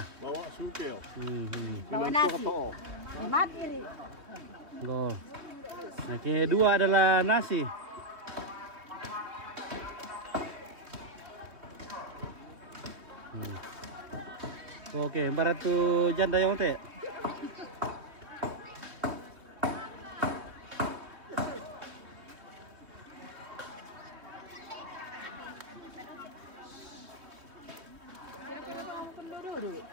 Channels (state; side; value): late; left; 3.1 ms